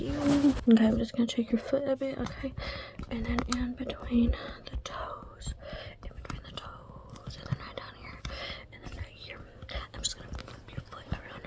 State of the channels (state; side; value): identical; both; correlation 1.00